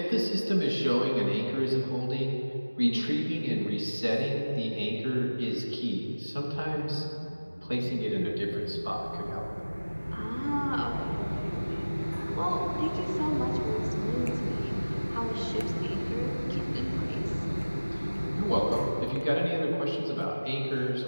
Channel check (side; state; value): both; inverted; correlation -1.00